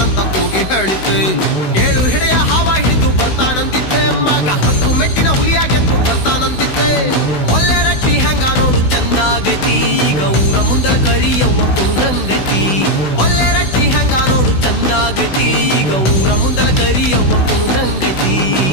ಕೂಗಿ ಹೇಳಿದ್ದೆ. 7 ಹೆಡೆಯ ಹಾವ ಹಿಡಿದು ಬರ್ತಾನಂದಿದ್ದೆ, ಮಗ 10 ಮೆಟ್ಟಿನ ಹುಲಿಯ ಗೆದ್ದು ಬರ್ತಾನಂದಿದ್ದೆ. ಒಳ್ಳೆ ರಟ್ಟಿ ಹೆಂಗ ನೋಡು ಚಂದಾಗೈತಿ, ಈಗ ಊರ ಮುಂದಲ ಕರಿಯವ್ವ ಕುಣದಂಗೈತಿ. ಒಳ್ಳೆ ರಟ್ಟಿ ಹೆಂಗ ನೋಡು ಚಂದಾಗೈತಿ, ಈಗ ಊರ ಮುಂದಲ ಕರಿಯವ್ವ ಕುಣದಂಗೈತಿ.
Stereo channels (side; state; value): right; late; 16 ms